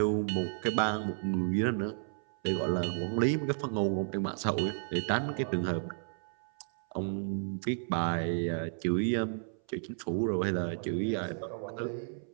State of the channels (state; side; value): silent; left; 56 dB below the other